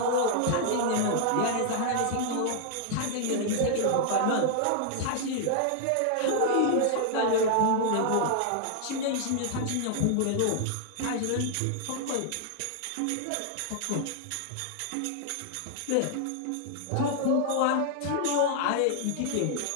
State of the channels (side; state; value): both; different; correlation 0.00